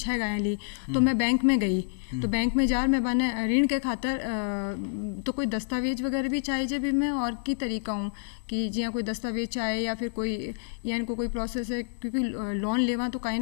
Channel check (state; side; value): silent; right; digital silence